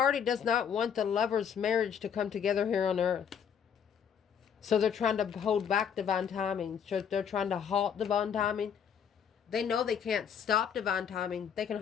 does not want the lover's marriage to come together here on earth. So they're trying to hold back divine timing. So they're trying to halt divine timing. They know they can't stop divine timing. They can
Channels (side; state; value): right; quieter; 7.8 dB